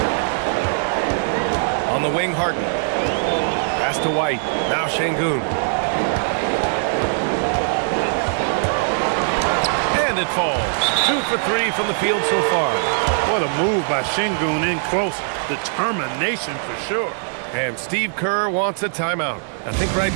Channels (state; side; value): silent; left; digital silence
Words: On the wing, Harden. Pass to White. Now Şengün. And it falls. 2 for 3 from the field so far. What a move by Şengün in close. Determination for sure. And Steve Kerr wants a timeout. I think right